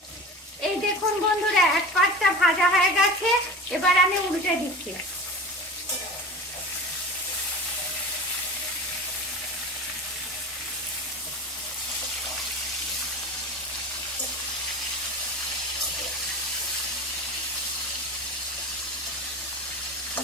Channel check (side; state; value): both; normal; correlation 0.33